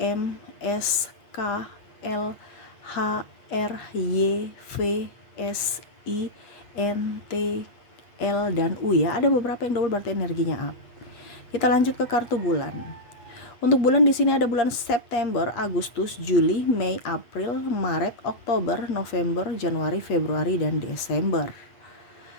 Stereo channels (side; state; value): right; late; 8.3 ms